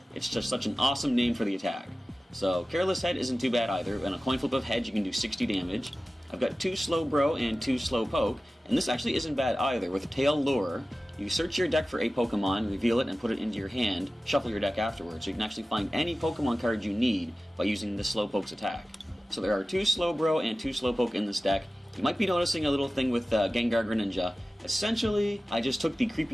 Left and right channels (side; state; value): both; normal; correlation 0.96